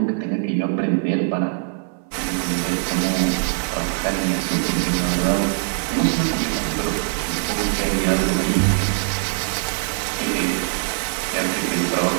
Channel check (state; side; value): silent; left; 61 dB below the other